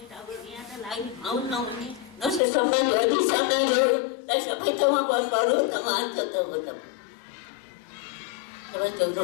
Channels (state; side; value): drops out; right; at 2.4 s